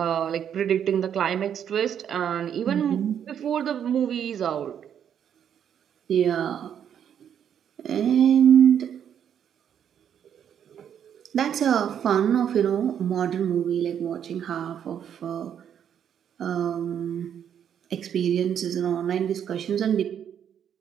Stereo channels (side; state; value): left; quieter; 8.9 dB